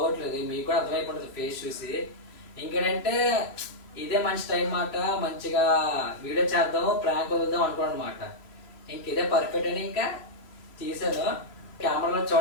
మీకు కూడా అర్థమైపోతుంది ఫేస్ చూసి. ఇంకేంటంటే ఇదే మంచి టైం మాట, మంచిగా వీడియో చేద్దాము, ప్రాంక్ వదులుదాం అనుకోండి అనమాట. ఇంక ఇదే పర్ఫెక్ట్ అని ఇంకా తీసాను. కెమెరాలో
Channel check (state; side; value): late; right; 3.1 ms